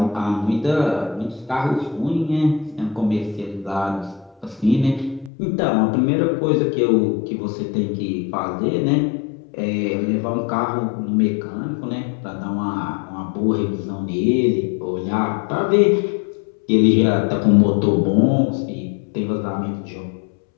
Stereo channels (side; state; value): right; drops out; at 5.3 s